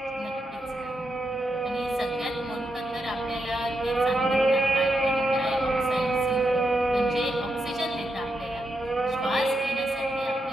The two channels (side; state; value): both; normal; correlation 0.84